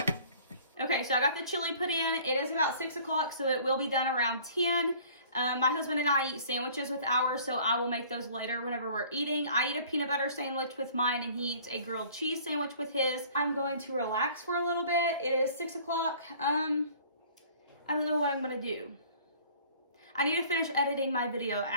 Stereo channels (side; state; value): both; inverted; correlation -0.51